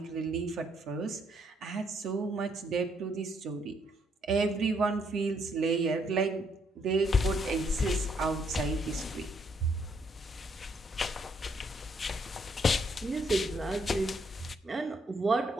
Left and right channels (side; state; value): both; normal; correlation 0.71